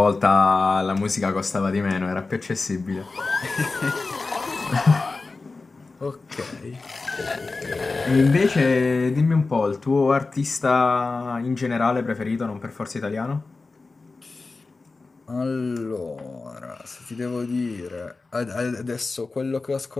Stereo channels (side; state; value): right; quieter; 3.8 dB